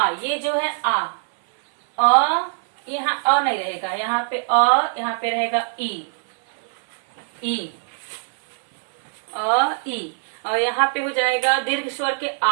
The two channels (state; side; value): silent; left; 62 dB below the other